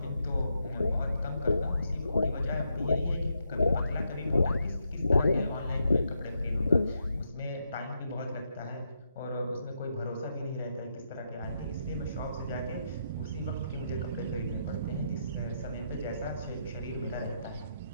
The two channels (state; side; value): inverted; both; correlation -0.81